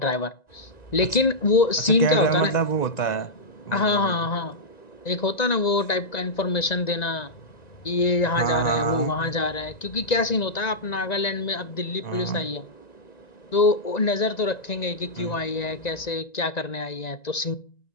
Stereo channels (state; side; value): late; right; 1.9 ms